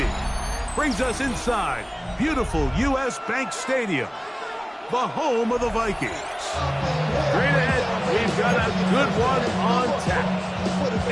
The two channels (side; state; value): both; identical; correlation 1.00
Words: brings us inside beautiful U.S. Bank Stadium, the home of the Vikings. Straight ahead, we've got a good one on tap.